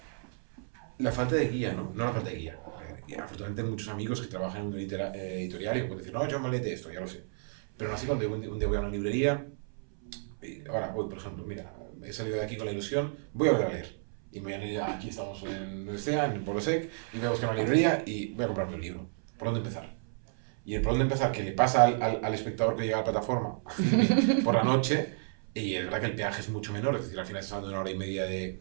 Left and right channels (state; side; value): silent; left; 57 dB below the other